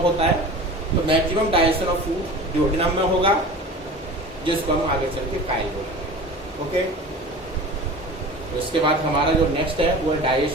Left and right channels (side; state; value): both; normal; correlation 0.36